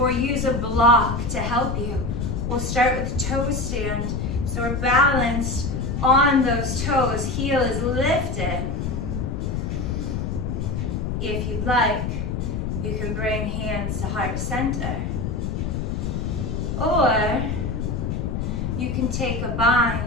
use a block to help you. We'll start with the toe stand. So we're balanced on those toes. Heel is lifted. If you'd like, you can bring hands to heart center. Or you can take a bind,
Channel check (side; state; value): left; noise; rumble, 2 dB below the sound